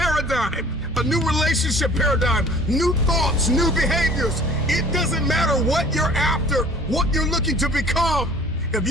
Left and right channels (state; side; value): normal; both; correlation 0.49